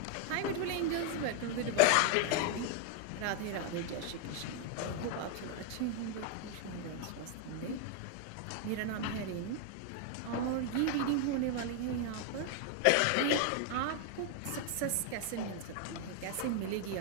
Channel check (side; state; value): both; different; correlation 0.01